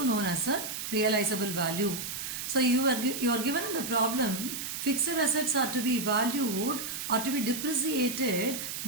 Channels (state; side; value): noise; right; hiss, 5 dB below the sound